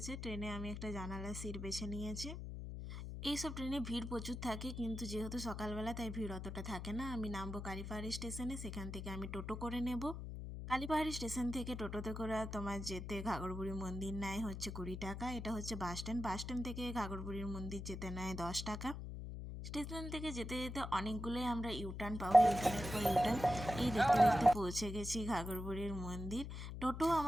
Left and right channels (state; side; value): noise; left; hum, 7 dB below the sound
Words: ট্রেনে আমি একটা জানালার সিট বেছে নিয়েছি। এইসব ট্রেনে ভিড় প্রচুর থাকে, কিন্তু যেহেতু সকালবেলা তাই ভিড় অতটা থাকে না। আমি নামবো কালীপাহাড়ি স্টেশনে, সেখান থেকে আমি টোটো করে নেব। কালীপাহাড়ি স্টেশন থেকে টোটোতে করে তোমার যেতে ঘাগরবুড়ি মন্দির নেয় হচ্ছে 20 টাকা। এটা হচ্ছে বাস স্ট্যান্ড। বাস স্ট্যান্ড থেকে ঘাগরবুড়ির মন্দির যেতে নেয় 10 টাকা। স্টেশন থেকে যেতে যেতে অনেকগুলোই আমরা ইউটার্ন পাবো, ইউটার্নের পর ইউটার্ন। এই দেখতে দেখতে পৌঁছে গেছি ঘাগরবুড়ির মন্দির। টোটো